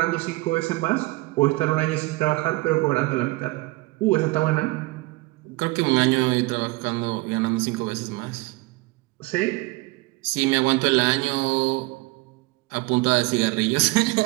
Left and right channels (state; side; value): quieter; left; 22.4 dB